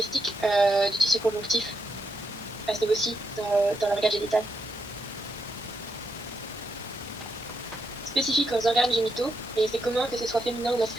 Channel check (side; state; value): both; normal; correlation 0.81